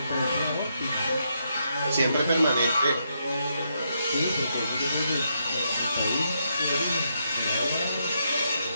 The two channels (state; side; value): inverted; both; correlation -0.79